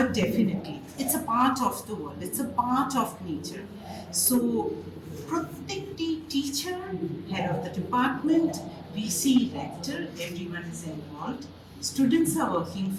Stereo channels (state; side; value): identical; both; correlation 1.00